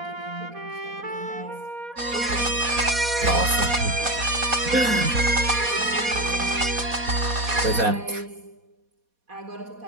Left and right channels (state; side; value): late; left; 4.2 ms